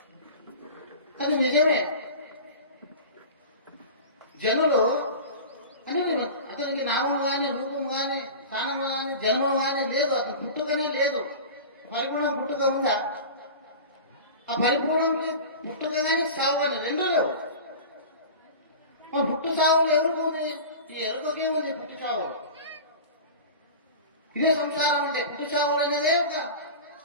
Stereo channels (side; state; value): both; inverted; correlation -0.33